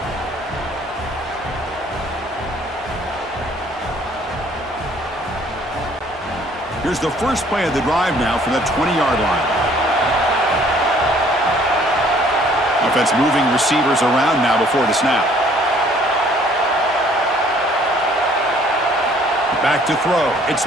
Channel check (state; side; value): normal; both; correlation 0.59